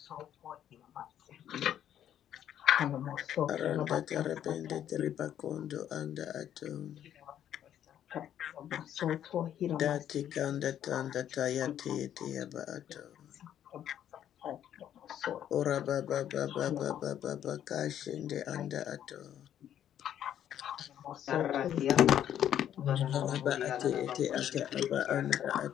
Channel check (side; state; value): right; quieter; 10.5 dB